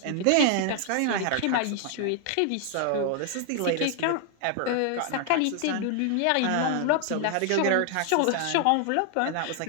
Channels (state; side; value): different; both; correlation 0.00